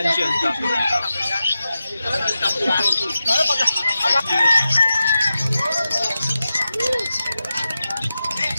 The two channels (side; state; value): both; inverted; correlation -0.91